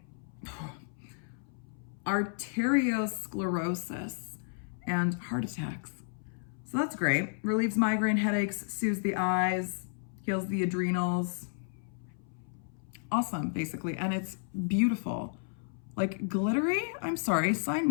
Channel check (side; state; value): right; silent; 56 dB below the other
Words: arteriosclerosis and heart attacks. So that's great. Relieves migraine headaches, soothes the eyes, heals the adrenals. Awesome, basically. And it's beautiful. Like glittery? I'm sorry, sign